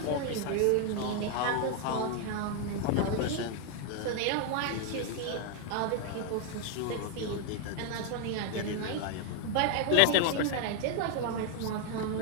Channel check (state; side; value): different; both; correlation 0.00